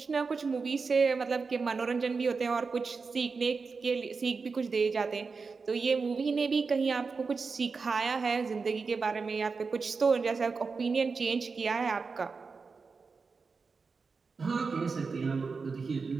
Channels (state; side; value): quieter; left; 4.7 dB